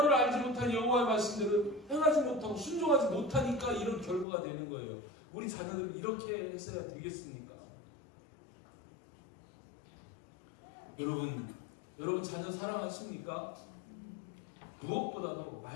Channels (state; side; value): drops out; right; at 4.2 s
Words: 말씀대로 행하지 못하고 순종하지 못하니까 이런 결과가 되는 거예요. 우리 자녀들은 이렇게 했어야 되겠습니까? 여러분 자녀 사랑하십니까? 무엇보다도